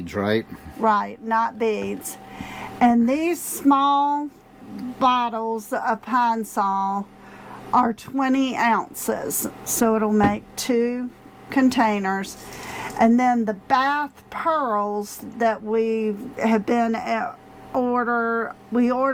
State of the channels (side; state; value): both; identical; correlation 1.00